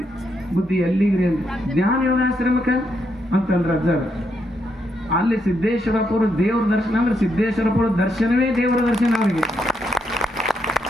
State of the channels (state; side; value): normal; both; correlation 0.79